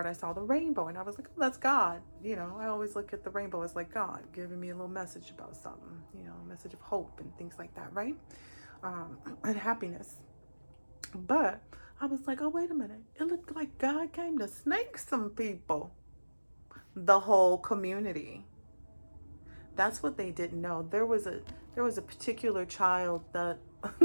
I saw the rainbow, and I was like, oh, that's God. You know, I always look at the rainbow as like God giving me a little message about something, you know, a message of hope and things like that, right? And happiness. But I was like, oh, wait a minute. It looked like God came to snake some people, the whole community. That's what they didn't know. There was a particular child that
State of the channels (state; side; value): inverted; both; correlation -1.00